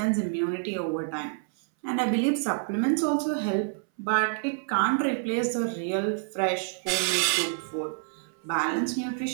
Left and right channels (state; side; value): silent; left; 60 dB below the other